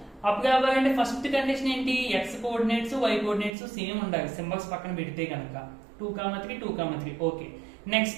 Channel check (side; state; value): left; drops out; at 3.5 s